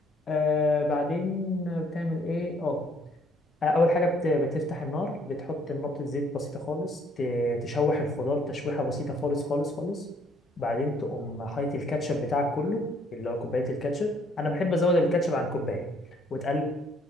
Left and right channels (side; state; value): both; normal; correlation 0.64